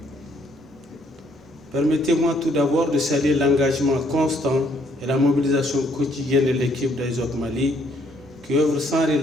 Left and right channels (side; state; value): both; normal; correlation 0.67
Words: Permettez-moi tout d'abord de saluer l'engagement constant et la mobilisation quotidienne de l'équipe d'Aizok Mali qui œuvre sans